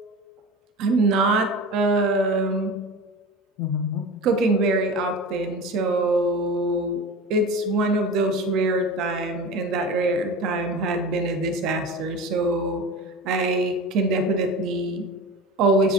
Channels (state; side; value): normal; both; correlation 0.32